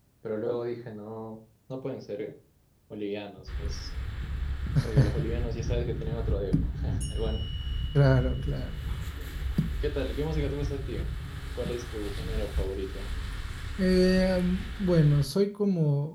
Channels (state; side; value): identical; both; correlation 1.00